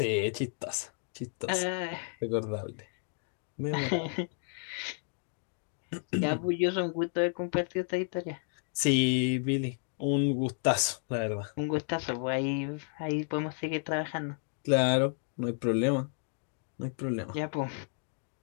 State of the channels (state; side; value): silent; right; 56 dB below the other